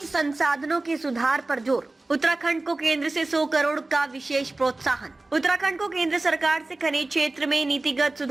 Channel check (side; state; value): left; quieter; 3.0 dB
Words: संसाधनों के सुधार पर जोर। उत्तराखंड को केंद्र से 100 करोड़ का विशेष प्रोत्साहन। उत्तराखंड को केंद्र सरकार से खनिज क्षेत्र में नीतिगत